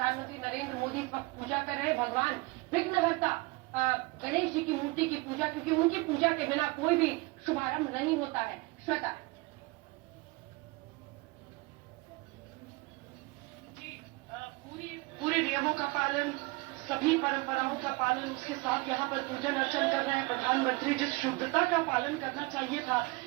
नरेंद्र मोदी इस वक्त पूजा कर रहे हैं भगवान विघ्नहर्ता गणेश जी की मूर्ति की पूजा, क्योंकि उनकी पूजा के बिना कोई भी शुभारंभ नहीं होता है। श्वेता पूरे नियमों का पालन, सभी परंपराओं का पालन, उसके साथ यहाँ पर पूजन अर्चन कर रहे हैं प्रधानमंत्री। जिस शुद्धता का पालन करना चाहिए था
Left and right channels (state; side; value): quieter; left; 24.5 dB